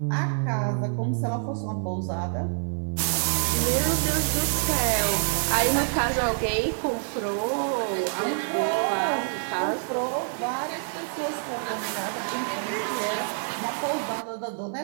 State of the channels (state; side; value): silent; left; 60 dB below the other